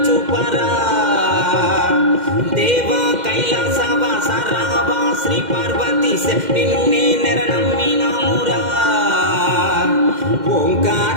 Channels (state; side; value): late; left; 2.1 ms